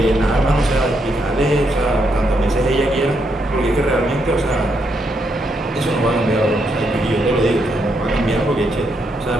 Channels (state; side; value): normal; both; correlation 0.78